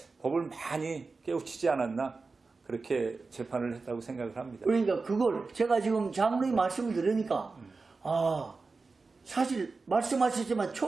법을 많이 깨우치지 않았나 그렇게 재판을 했다고 생각을 합니다. 그러니까 그걸 제가 지금 장로님 말씀을 들으니까 사실 말씀하셨지만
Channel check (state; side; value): quieter; left; 4.1 dB